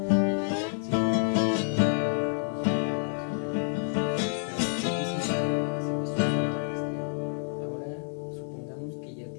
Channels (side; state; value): right; silent; 59 dB below the other